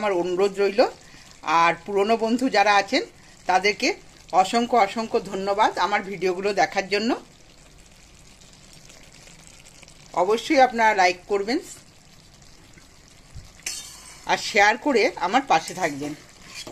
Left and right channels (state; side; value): identical; both; correlation 1.00